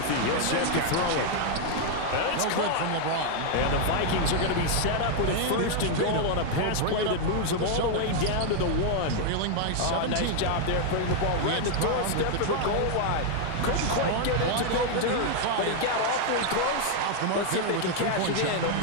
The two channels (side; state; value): both; different; correlation 0.00